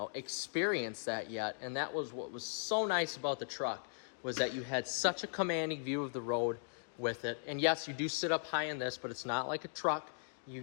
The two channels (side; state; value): right; silent; digital silence